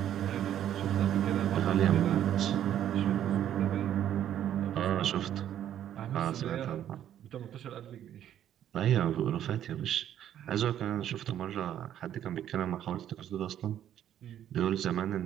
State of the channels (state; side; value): quieter; left; 10.8 dB